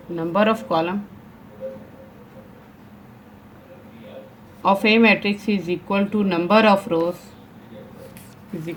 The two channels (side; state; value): both; identical; correlation 1.00